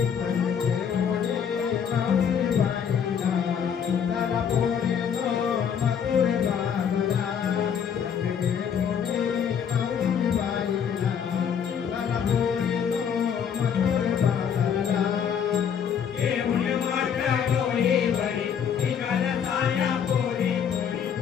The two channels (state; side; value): quieter; right; 7.7 dB